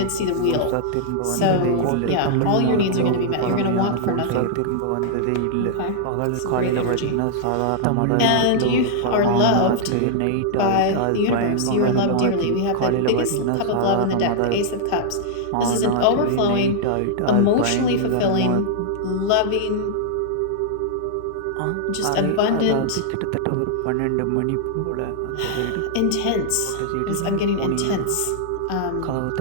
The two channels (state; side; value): different; both; correlation -0.01